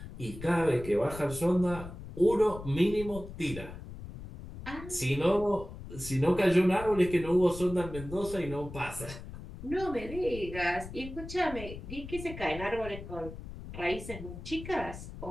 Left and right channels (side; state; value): left; noise; rumble, 12 dB below the sound